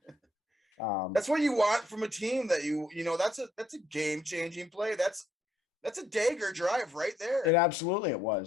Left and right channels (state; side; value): normal; both; correlation 0.71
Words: That's what you want from a team that that's a game-changing play. That's a dagger drive right there. It absolutely it